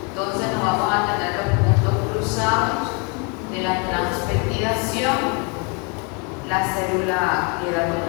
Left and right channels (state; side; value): quieter; right; 32.0 dB